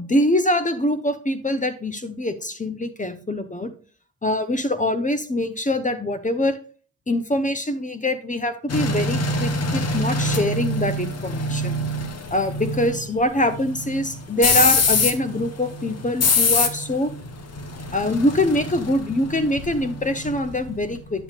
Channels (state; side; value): normal; both; correlation 0.31